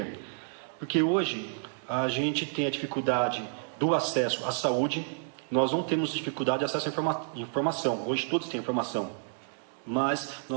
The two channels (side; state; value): left; silent; digital silence